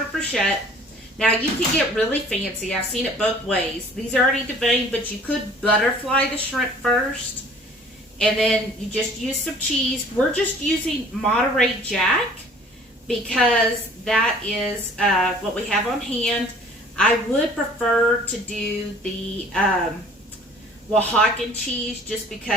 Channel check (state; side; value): normal; both; correlation 0.51